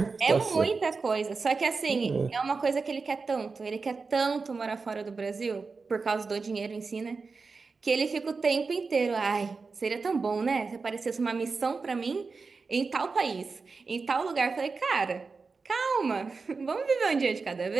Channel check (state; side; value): quieter; left; 4.4 dB